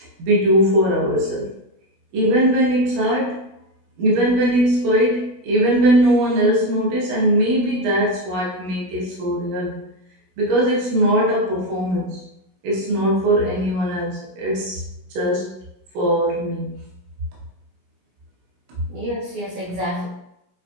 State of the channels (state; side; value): late; left; 16 ms